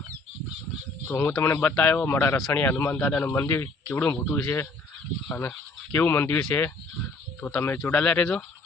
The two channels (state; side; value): quieter; right; 3.4 dB